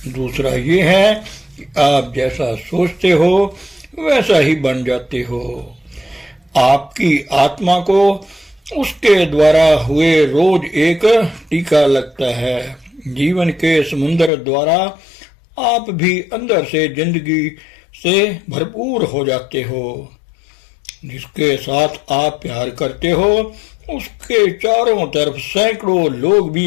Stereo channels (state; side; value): drops out; right; at 14.3 s